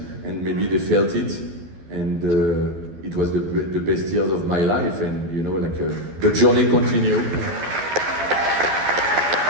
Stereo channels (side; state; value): left; late; 12 ms